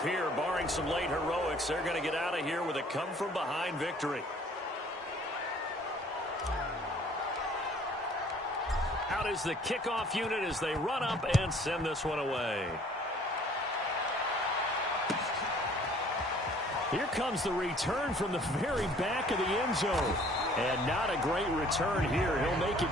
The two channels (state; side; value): normal; both; correlation 0.55